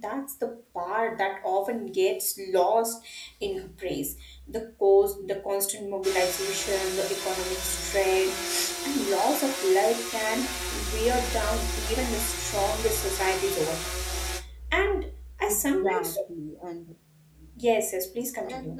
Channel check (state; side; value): identical; both; correlation 1.00